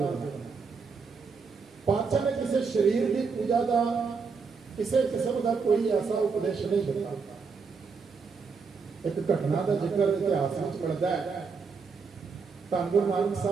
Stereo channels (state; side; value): quieter; left; 5.1 dB